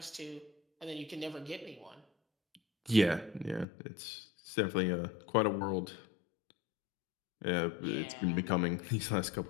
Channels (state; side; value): drops out; right; at 3.7 s